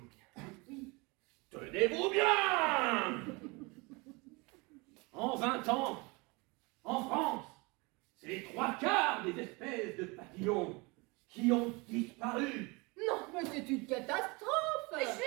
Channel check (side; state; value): left; quieter; 26.9 dB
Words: bien. Oui. Tenez-vous bien. En 20 ans, en France, c'est les 3/4 des espèces de papillons qui ont disparu. Non, mais c'est une catastrophe. Mais je